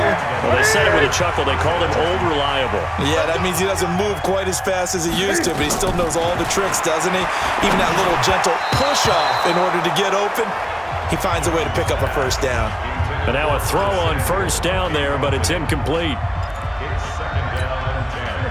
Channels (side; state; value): both; identical; correlation 1.00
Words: him? Well, they said it with a chuckle. They called him Old Reliable. Yeah, that means he doesn't move quite as fast as he used to, but he still knows all the tricks, doesn't he? Even that little gentle push-off in order to get open, he finds a way to pick up a 1st down. And now a throw on 1st down there, but it's incomplete.